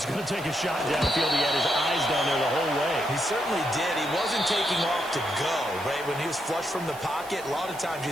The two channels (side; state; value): right; noise; hiss, 18 dB below the sound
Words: going to take a shot downfield. He had his eyes down there the whole way. He certainly did. He wasn't taking off to go, right? When he was flush from the pocket, a lot of times you